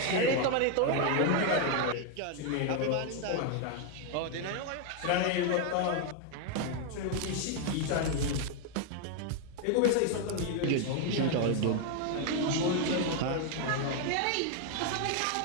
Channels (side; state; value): both; different; correlation 0.01